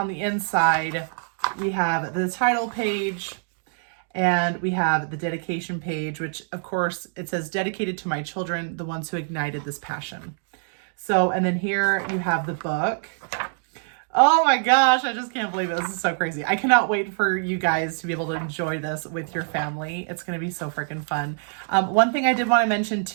the inside, we have the title page and we have the dedication page, which of course it says dedicated to my children, the ones who ignited this passion. So, and then here you have the book. Oh my gosh, I just can't believe it. This is so crazy. I cannot wait for you guys to be able to enjoy this with your family. It's going to be so freaking fun. One thing I did want to mention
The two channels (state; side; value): silent; left; digital silence